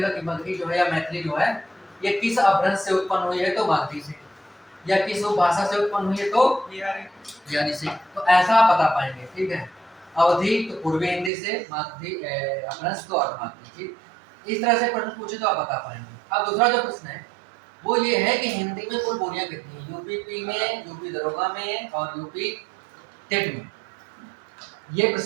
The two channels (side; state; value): left; drops out; at 11.3 s